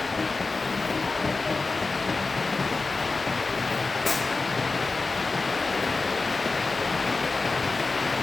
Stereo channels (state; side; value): quieter; right; 3.8 dB